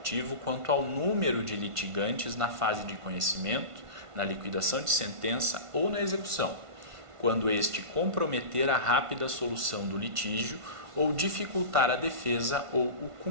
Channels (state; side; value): late; left; 1.5 ms